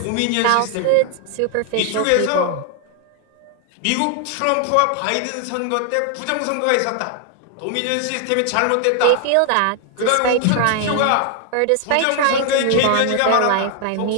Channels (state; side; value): different; both; correlation 0.00